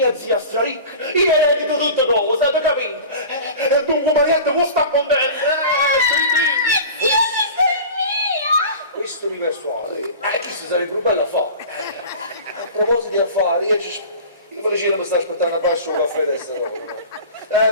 zia straricca. Io eredito tutte cose, avete capito? Dunque Marietta può stare contenta. Questo mi persuade. Questo sarebbe un bel affare. A proposito di affari, io Felicina mi sta aspettando a basso un caffè adesso.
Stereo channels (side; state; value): both; inverted; correlation -0.37